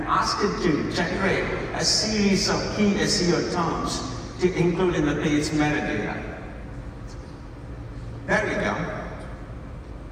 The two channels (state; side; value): identical; both; correlation 1.00